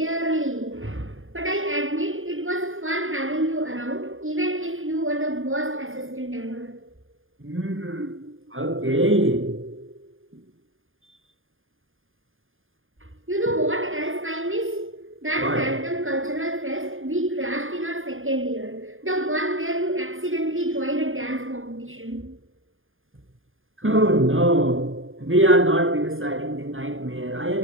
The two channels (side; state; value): left; late; 0.59 ms